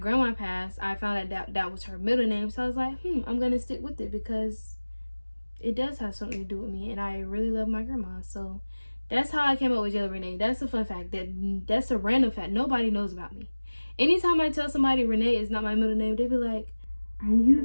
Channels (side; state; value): both; inverted; correlation -1.00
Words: passed, I found out that was her middle name. So I was like, I'm gonna stick with it because it does have something to do with me, and I really love my grandma. So that's how I came up with Jayla Renee. That's a fun fact. That's a random fact. Nobody knows about me. Anytime I tell somebody Renee is not my middle name, they be like, "Are